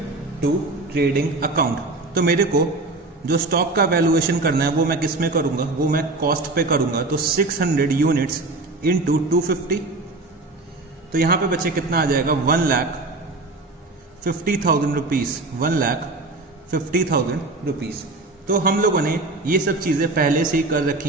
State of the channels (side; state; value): left; quieter; 3.2 dB